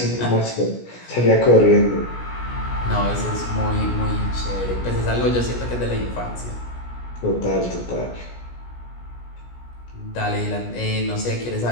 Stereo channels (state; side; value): late; right; 17 ms